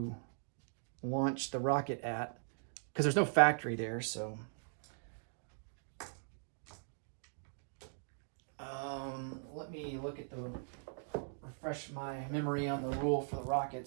launch the rocket at, because there's no factory there, so... let me look at refresh my memory on the rule for the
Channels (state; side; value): silent; left; digital silence